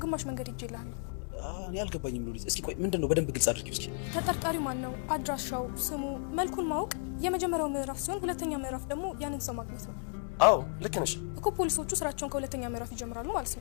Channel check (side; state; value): right; silent; 56 dB below the other